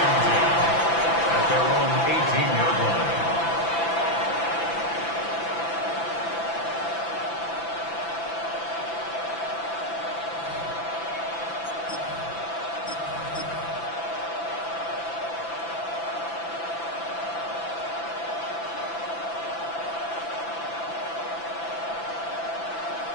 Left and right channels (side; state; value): right; late; 5.9 ms